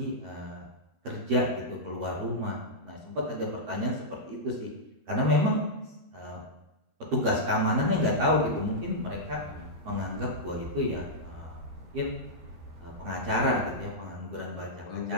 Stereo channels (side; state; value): left; late; 12 ms